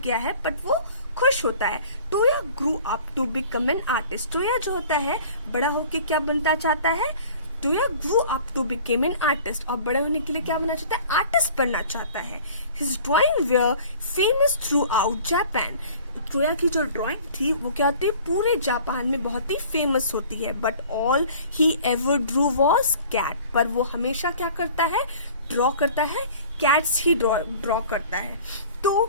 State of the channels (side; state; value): both; inverted; correlation -0.47